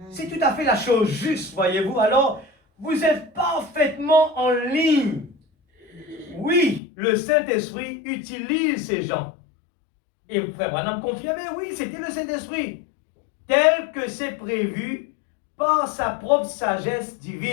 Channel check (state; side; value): drops out; right; at 6.8 s